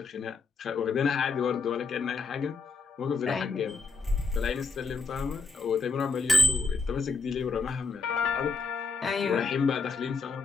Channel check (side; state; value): right; quieter; 4.3 dB